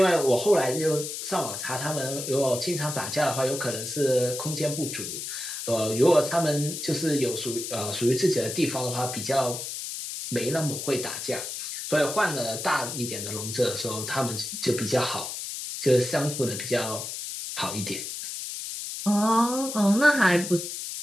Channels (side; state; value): left; noise; hiss, 6 dB below the sound